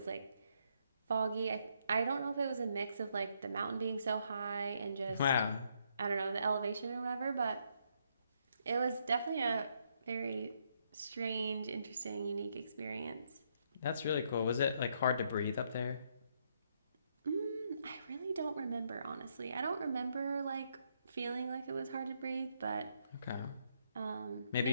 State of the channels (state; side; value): inverted; both; correlation -0.74